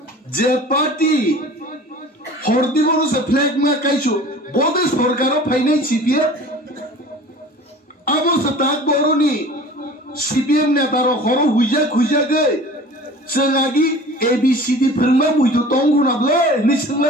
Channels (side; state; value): both; normal; correlation 0.42